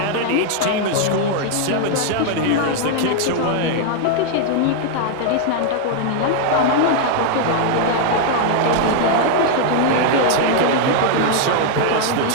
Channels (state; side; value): different; both; correlation 0.00